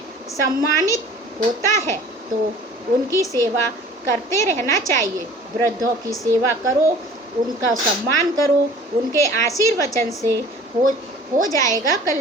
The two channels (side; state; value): both; normal; correlation 0.47